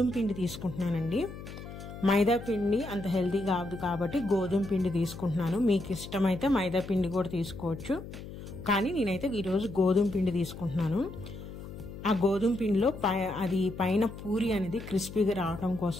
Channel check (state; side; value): noise; left; hum, 12 dB below the sound